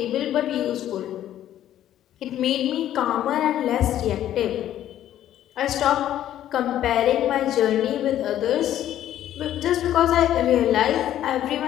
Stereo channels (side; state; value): right; quieter; 11.9 dB